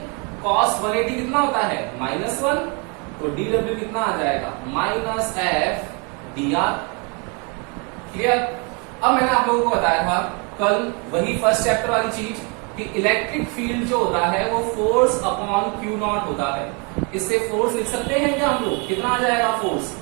cos 180 कितना होता है? -1। तो dW कितना आ जाएगा? Minus F dr। क्लियर? अब मैंने आप लोगों को बताया था कल वही फर्स्ट चैप्टर वाली चीज कि इलेक्ट्रिक फील्ड जो होता है वो फोर्स अपॉन Q नॉट होता है। इससे फोर्स लिख सकते हैं क्या हम लोग? कितना आ जाएगा force?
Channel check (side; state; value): left; quieter; 33.2 dB